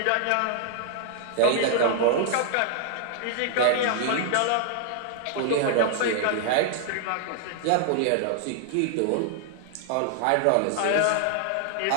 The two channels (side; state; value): both; different; correlation 0.00